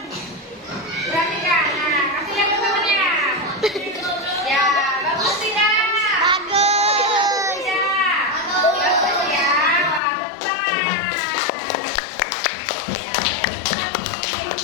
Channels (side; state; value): right; drops out; at 10.0 s